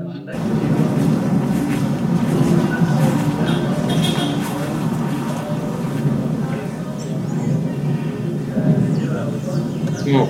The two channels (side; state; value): both; identical; correlation 1.00